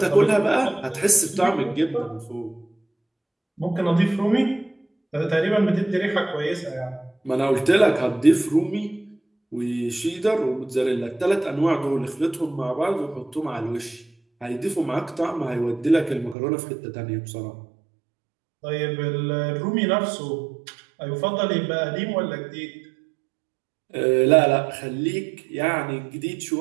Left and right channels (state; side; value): drops out; left; at 16.4 s